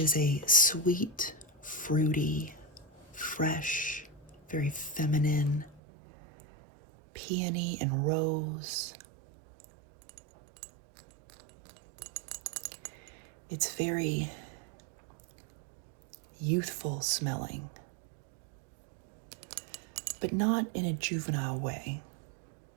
a sweet, fruity, fresh, very feminine, peony and rose. It's very youthful smelling, but not in a juvenile way.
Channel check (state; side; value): drops out; left; at 5.8 s